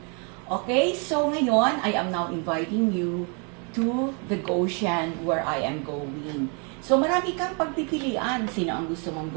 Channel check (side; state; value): left; quieter; 36.3 dB